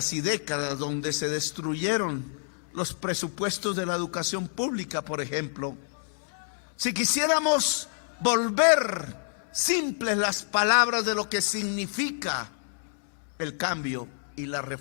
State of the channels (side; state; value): right; silent; digital silence